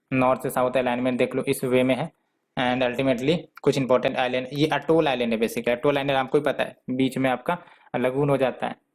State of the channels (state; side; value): identical; both; correlation 1.00